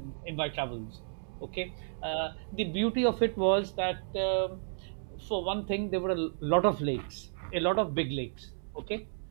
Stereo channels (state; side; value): silent; left; digital silence